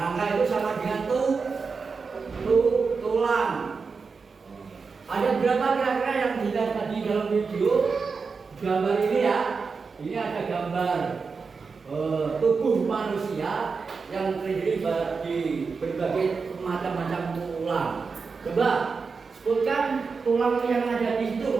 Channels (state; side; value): quieter; left; 4.9 dB